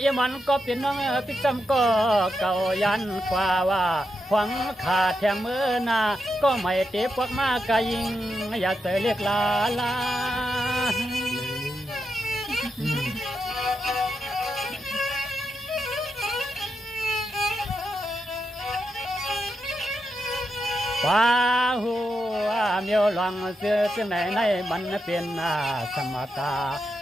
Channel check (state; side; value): normal; both; correlation 0.85